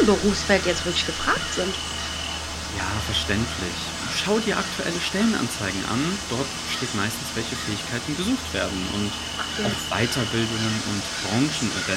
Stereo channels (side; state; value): both; identical; correlation 1.00